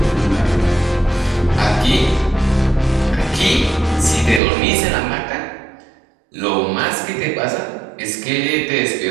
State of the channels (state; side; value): drops out; left; at 4.4 s